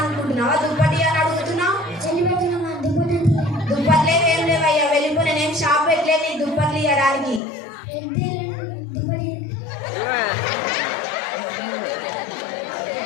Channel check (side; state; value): right; drops out; at 7.4 s